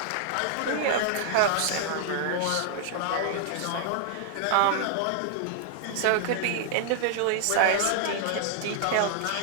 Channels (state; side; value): different; both; correlation -0.01